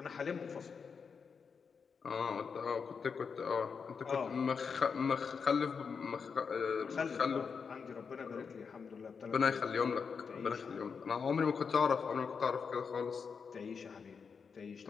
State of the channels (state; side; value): quieter; right; 5.8 dB